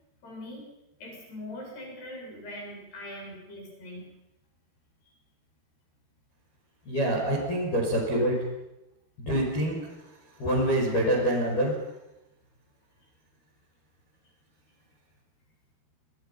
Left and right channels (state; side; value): late; right; 13 ms